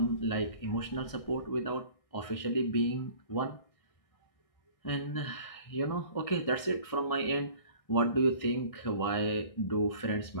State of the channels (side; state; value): right; late; 1.6 ms